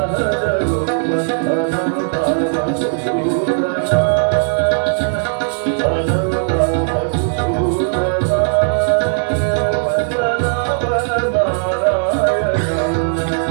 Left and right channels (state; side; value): silent; left; 68 dB below the other